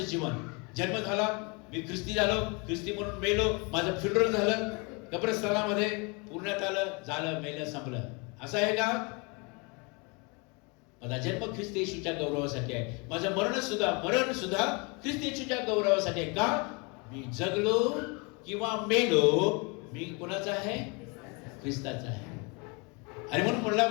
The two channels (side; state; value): right; quieter; 30.7 dB